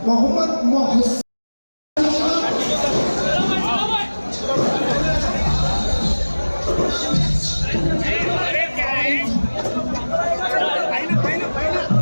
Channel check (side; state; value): both; inverted; correlation -1.00